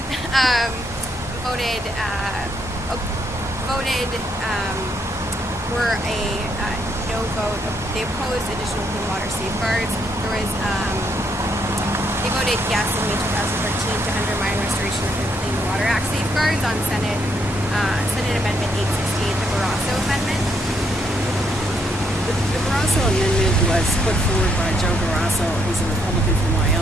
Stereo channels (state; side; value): normal; both; correlation 0.74